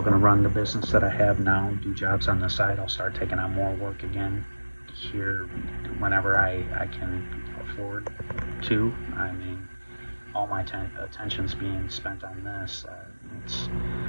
going to run the business that I have now, do jobs on the side. I'll start taking on more work again here whenever I can afford to. I mean, all my attention's being spent on this. It's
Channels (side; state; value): both; inverted; correlation -1.00